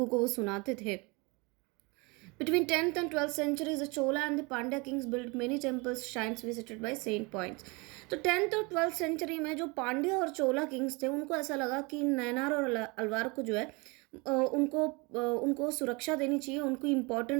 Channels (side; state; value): left; quieter; 27.9 dB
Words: को वो सुनाते थे। Between 10th and 12th centuries, the Chola and the Pandya kings built many temples, shrines visited by saint points. तो 10th और 12th सेंचुरी में जो पांड्या और चोला किंग्स थे, उनको ऐसा लगा कि नैनार और अलवार को जो है उनको सुरक्षा देनी चाहिए, उनको